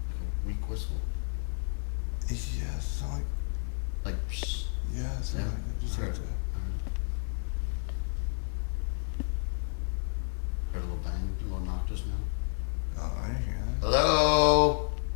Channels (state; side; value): silent; right; digital silence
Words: Like a weak whistle? Yeah, it sound like, Like, psst. yeah, it sound Yeah, like it. Just I like heard it. that. Heard a little bang, a little knock just now. Oh, I didn't hear that. Hello?